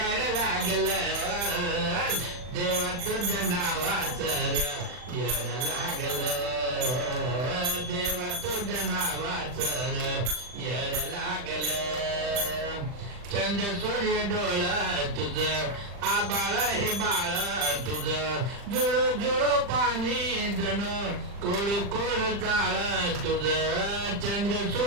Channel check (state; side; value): late; left; 40 ms